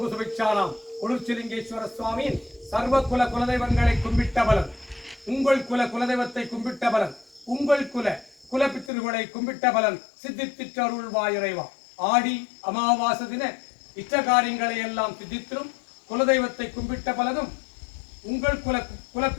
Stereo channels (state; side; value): drops out; right; at 8.9 s